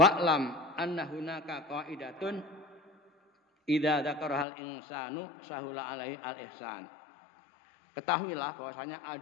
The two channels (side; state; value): right; drops out; at 4.5 s